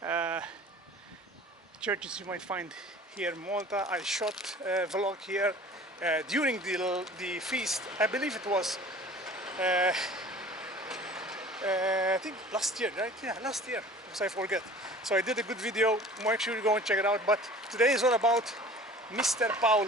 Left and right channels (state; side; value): normal; both; correlation 0.44